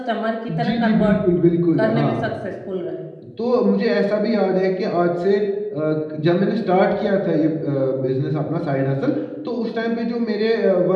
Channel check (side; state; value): both; identical; correlation 1.00